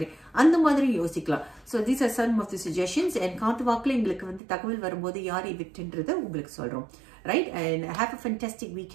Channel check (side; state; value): left; drops out; at 4.4 s